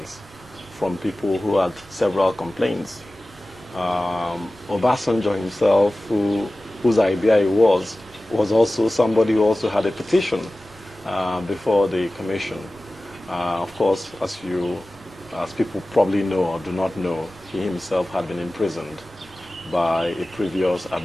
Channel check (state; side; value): normal; both; correlation 0.97